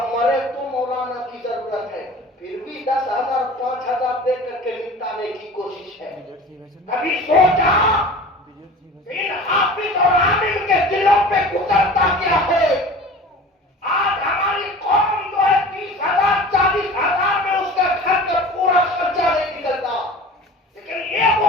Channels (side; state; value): both; normal; correlation 0.40